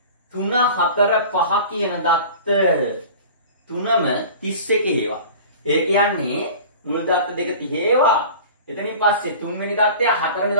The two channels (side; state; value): both; inverted; correlation -0.40